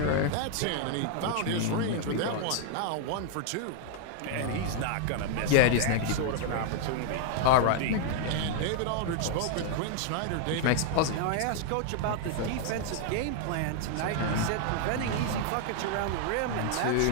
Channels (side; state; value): both; different; correlation 0.00